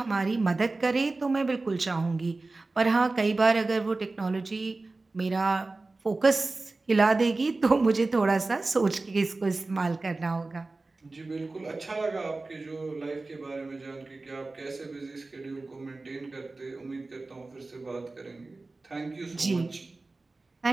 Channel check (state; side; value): quieter; left; 3.4 dB